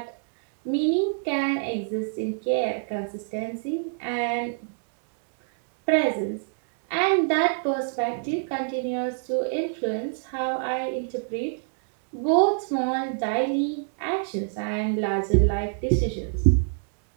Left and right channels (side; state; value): left; silent; digital silence